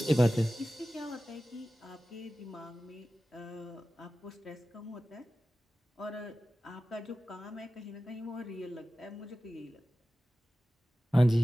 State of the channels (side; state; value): both; normal; correlation 0.95